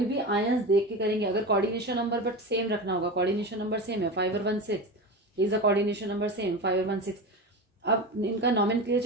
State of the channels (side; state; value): both; normal; correlation 0.25